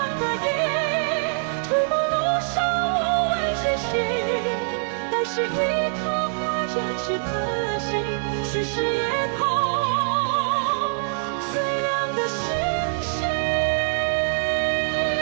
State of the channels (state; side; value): silent; left; digital silence